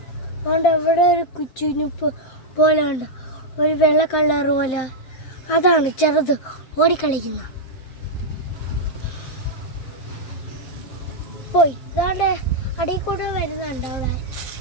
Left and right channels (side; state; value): right; late; 7.7 ms